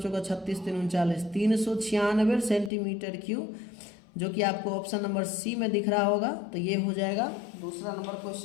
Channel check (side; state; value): right; drops out; at 2.7 s